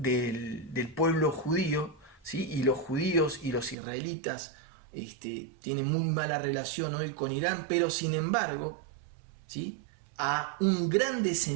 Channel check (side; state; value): left; drops out; at 3.8 s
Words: pueblo judío, ¿sí?, y los judíos y los israelitas tienen muy mala relación hoy con Irán, pero sin embargo, ¿sí?, a un gran